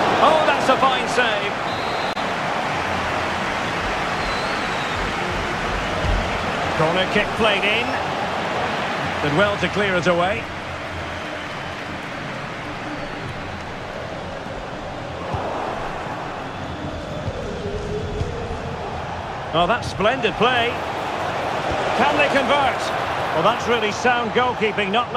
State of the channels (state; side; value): identical; both; correlation 1.00